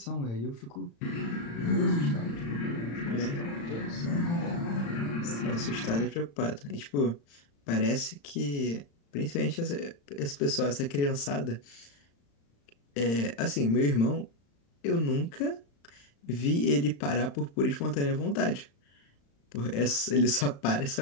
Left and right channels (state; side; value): late; right; 35 ms